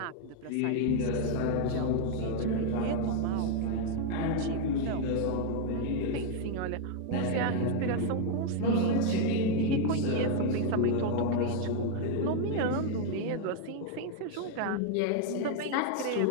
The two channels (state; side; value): different; both; correlation 0.00